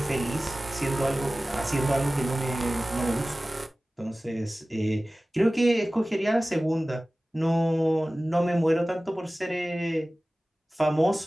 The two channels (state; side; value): normal; both; correlation 0.97